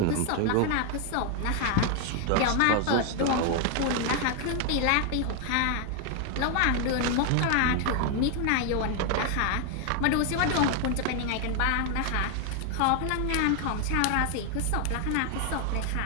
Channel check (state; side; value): different; both; correlation 0.01